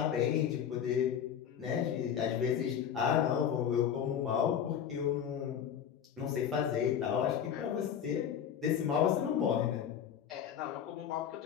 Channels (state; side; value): quieter; right; 8.6 dB